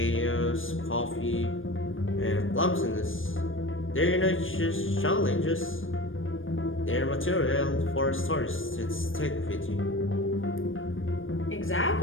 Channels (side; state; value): right; late; 0.59 ms